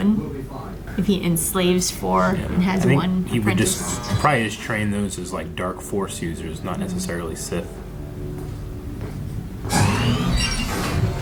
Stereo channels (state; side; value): identical; both; correlation 1.00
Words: If he enslaves 4 and has I think one he would apprentice? probably just train those as like dark Force users, not necessarily Sith.